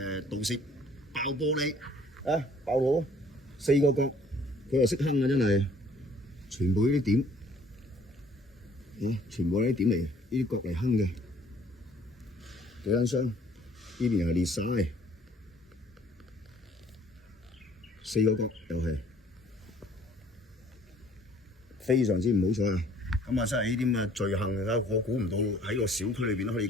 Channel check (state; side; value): normal; both; correlation 0.57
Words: 盜竊爆玻璃啊！爆到4個角，佢又識坑啊！真係，全部呢啲點，全部呢啲點嚟，呢啲角嚟坑嘅。幾間箱，呢邊又係裂晒，4個角又係非常之唔好彩啊！咁啊，真係呢啲咁嘅罪行啊！我估唔到喺個小區裏邊都可以